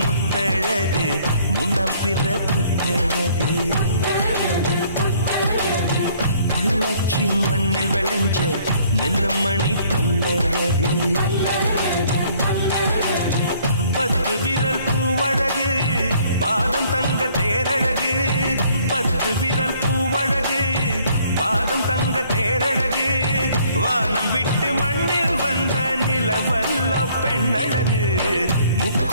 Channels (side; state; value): both; inverted; correlation -0.61